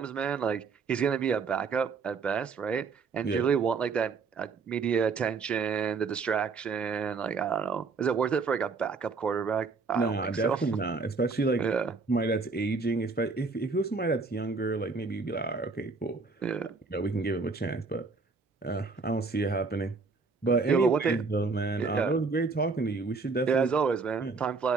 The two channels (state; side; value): quieter; left; 4.5 dB